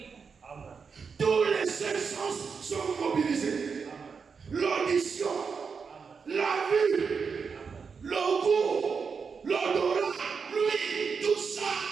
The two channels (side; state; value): left; quieter; 5.6 dB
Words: Tous les cinq sens sont mobilisés. L'audition, la vue, le goût, l'odorat, l'ouïe, tout ça,